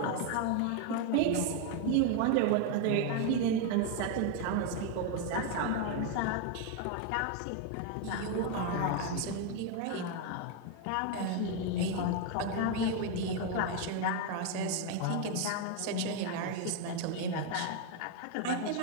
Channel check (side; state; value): both; different; correlation 0.01